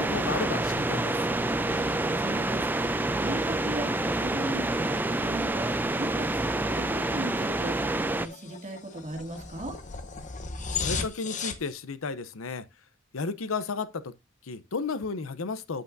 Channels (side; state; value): both; normal; correlation 0.56